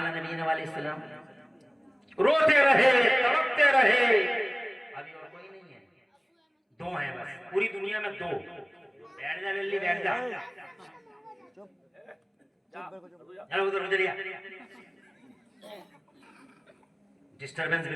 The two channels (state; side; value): identical; both; correlation 1.00